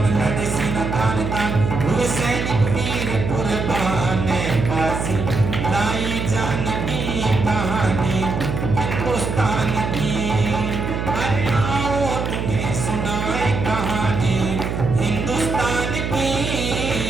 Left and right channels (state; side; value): noise; right; hum, 2 dB below the sound